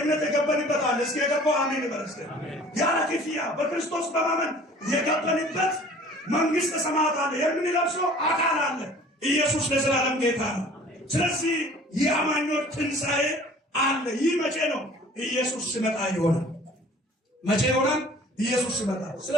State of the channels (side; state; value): both; normal; correlation 0.49